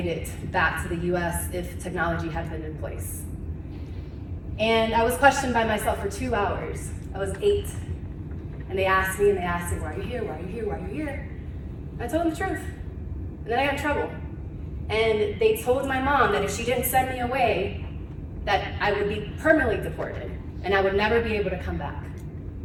it back to the US if technology had been in place. And I was questioned by myself for 2 hours. I was 8. And they asked me, why are you here? Why are you here? Why are you here? And I told them the truth. And then I got in trouble. And they told my mom that if she didn't send me away, that I would be permanently deported and I would never be able to come back.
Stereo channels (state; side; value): identical; both; correlation 1.00